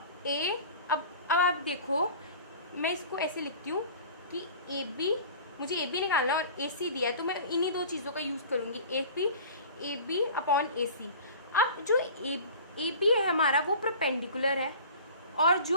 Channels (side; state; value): both; inverted; correlation -0.41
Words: A, अब आप देखो मैं इसको ऐसे लिखती हूँ कि AB, मुझे AB निकालना है और AC दिया है, तो मैं इन्हीं दो चीज़ों का यूज़ करूँगी, AB अपॉन AC। अब जो AB है हमारा वो परपेंडिकुलर है, और